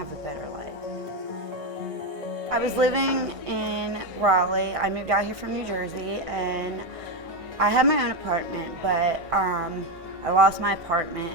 a better life. I was living in Raleigh. I moved out here from New Jersey, and I had my own apartment, but I lost my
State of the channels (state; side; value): late; left; 1.6 ms